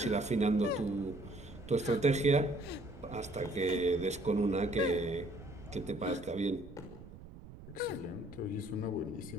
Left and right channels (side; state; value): right; noise; rumble, 16 dB below the sound